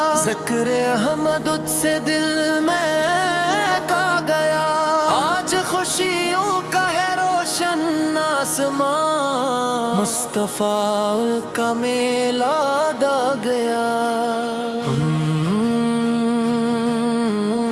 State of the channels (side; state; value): both; identical; correlation 1.00